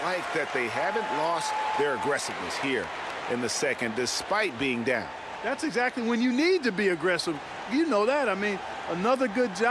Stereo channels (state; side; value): identical; both; correlation 1.00